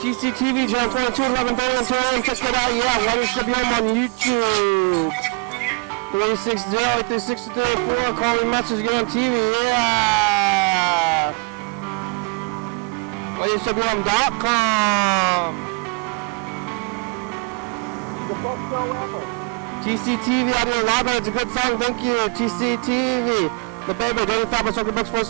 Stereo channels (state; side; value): quieter; left; 31.4 dB